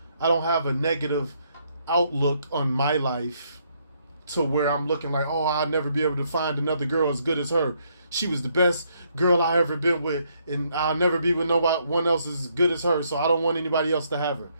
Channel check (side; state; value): both; inverted; correlation -0.72